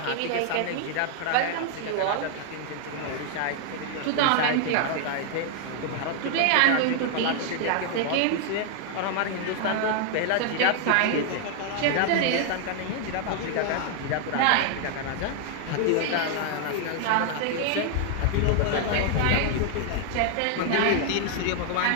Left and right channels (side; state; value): both; different; correlation 0.00